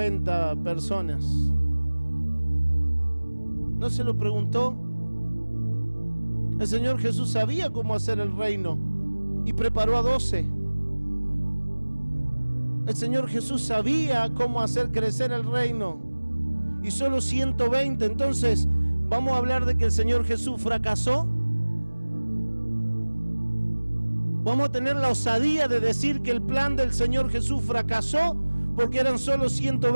personas? ¿No se lo preguntó? El Señor Jesús sabía cómo hacer el reino y preparó a 12. El Señor Jesús sabía cómo hacer crecer el reino y solo 120. Entonces, ¿vamos a hablar de que el Señor Jesús fracasó? ¿Vamos a tener la osadía de decir que el plan del Señor Jesús fracasó porque eran solo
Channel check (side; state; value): both; inverted; correlation -1.00